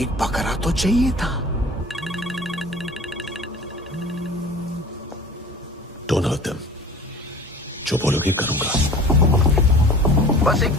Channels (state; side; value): normal; both; correlation 0.42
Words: एक बकरा तो चाहिए था। Don't hurt them. जो बोलोगे करूंगा। बस एक